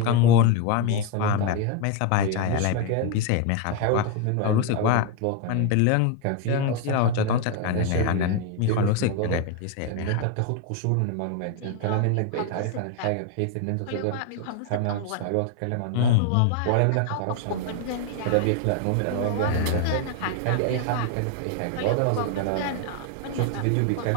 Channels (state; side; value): different; both; correlation 0.01